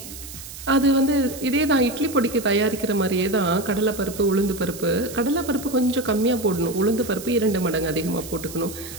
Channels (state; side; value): noise; right; hiss, 13 dB below the sound